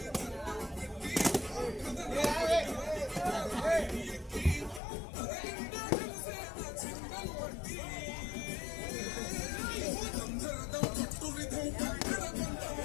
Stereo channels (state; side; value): drops out; right; at 4.8 s